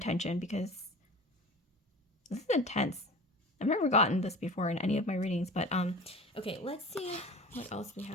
because this is intense. I've never gotten this before in any of my readings, but okay, let's see what else we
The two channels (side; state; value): both; normal; correlation 0.37